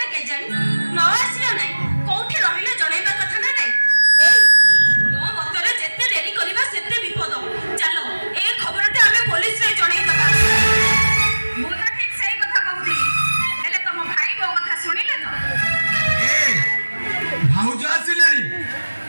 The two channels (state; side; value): inverted; both; correlation -1.00